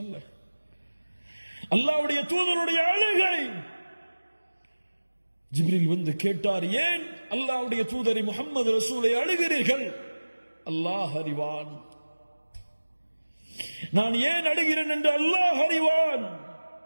அல்ல. அல்லாஹ்வுடைய தூதருடைய அழுகை. ஜிப்ரீல் வந்து கேட்டார், ஏன் அல்லாஹ்வுடைய தூதரை முஹம்மது ரசூலை அழுகிறீர்கள்? அல்லாஹ் அறிவான். நான் ஏன் அழுகிறேன் என்று அல்லாஹ் அறிவான்.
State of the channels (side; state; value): both; inverted; correlation -1.00